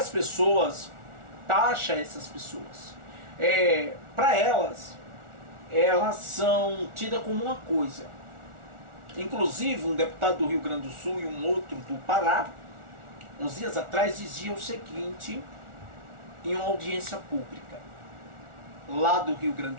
pessoas taxam essas pessoas. Para elas são tidas como uma coisa. Inclusive um deputado do Rio Grande do Sul e um outro do Pará, uns dias atrás, dizia o seguinte em uma audiência pública lá do Rio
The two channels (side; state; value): left; late; 1.4 ms